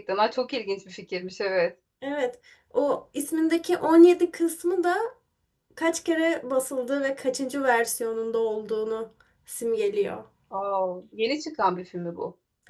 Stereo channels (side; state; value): both; identical; correlation 1.00